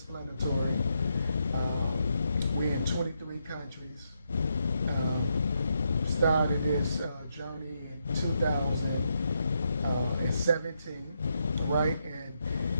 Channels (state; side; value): inverted; both; correlation -0.81